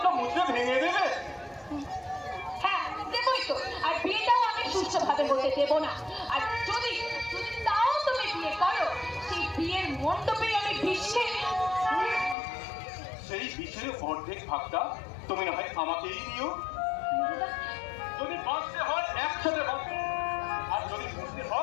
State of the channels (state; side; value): drops out; right; at 12.4 s